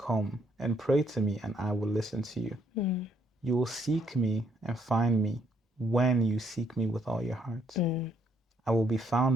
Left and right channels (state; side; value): normal; both; correlation 0.70